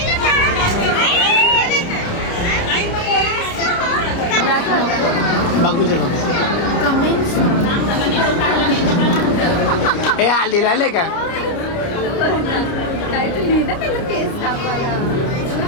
बघू दे बघू. हे हल्दीला आले का.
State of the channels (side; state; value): right; late; 29 ms